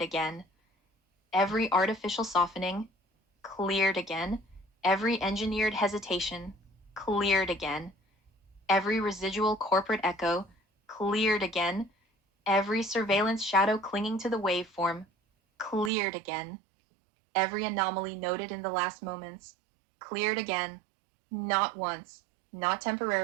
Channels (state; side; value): drops out; left; at 15.9 s